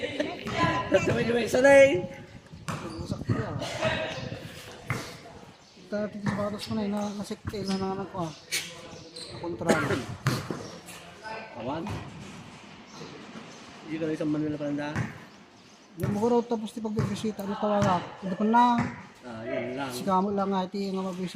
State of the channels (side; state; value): both; identical; correlation 1.00